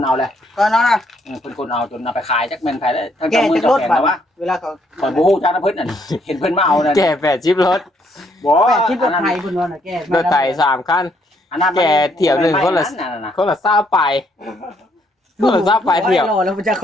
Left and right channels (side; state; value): both; normal; correlation 0.70